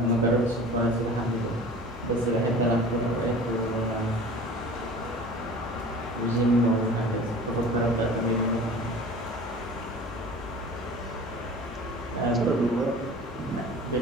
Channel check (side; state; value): both; normal; correlation 0.41